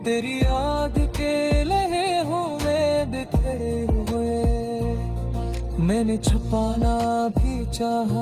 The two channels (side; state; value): both; identical; correlation 1.00